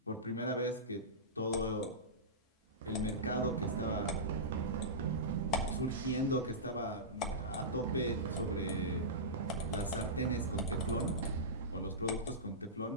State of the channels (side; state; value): both; normal; correlation -0.17